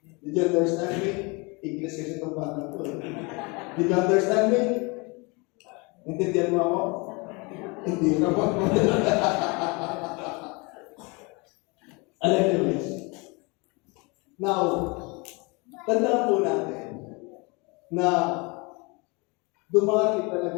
Did you understand me? English kasi itong bata ko. Did you understand me? Intindihan mo ako? Hindi ka pa. Anyways. Now, tandaan po natin na dumarating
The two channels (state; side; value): quieter; right; 28.6 dB